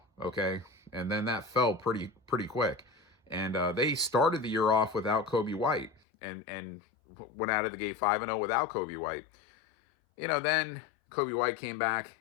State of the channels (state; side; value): drops out; right; at 6.0 s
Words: okay? And then that fell pretty quick. And they started the year off without Coby White and went out of the gate 5-0 without Coby White. Then Coby White came back.